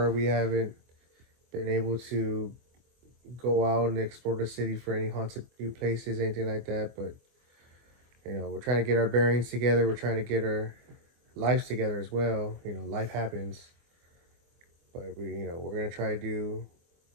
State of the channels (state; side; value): late; left; 24 ms